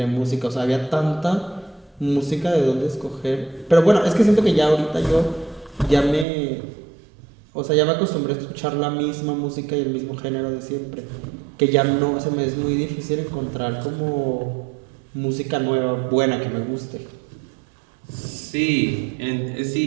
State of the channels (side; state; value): left; drops out; at 6.2 s